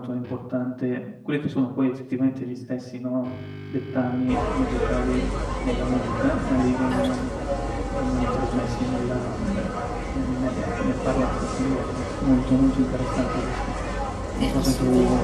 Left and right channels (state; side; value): identical; both; correlation 1.00